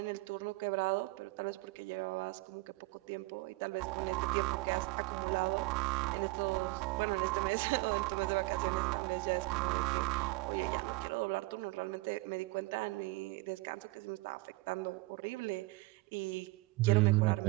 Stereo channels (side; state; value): left; quieter; 23.1 dB